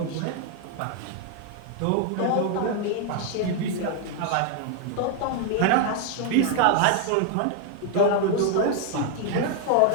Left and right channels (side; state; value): both; different; correlation 0.00